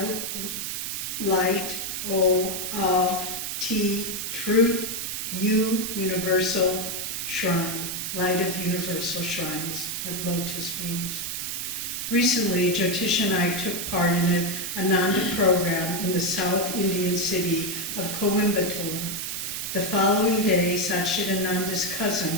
Light, O, of, T, Truth, U, Universal Shrine. Light of Universal Shrine is what Lotus means. Recently, Jyotish and I took part in an Ananda program in the South Indian city of Coimbatore. The following day, Satchidananda's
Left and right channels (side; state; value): right; noise; hiss, 4 dB below the sound